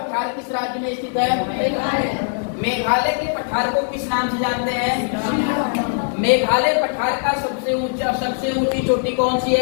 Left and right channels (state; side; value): silent; right; 65 dB below the other